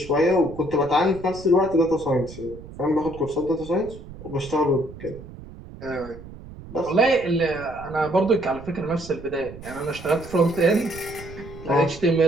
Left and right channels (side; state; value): right; noise; rumble, 15 dB below the sound